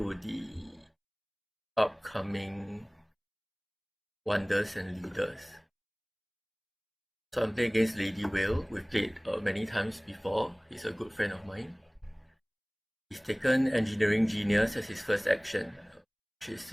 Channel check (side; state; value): both; identical; correlation 1.00